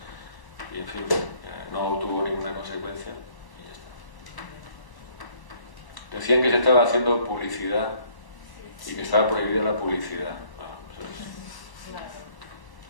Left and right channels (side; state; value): right; late; 1.0 ms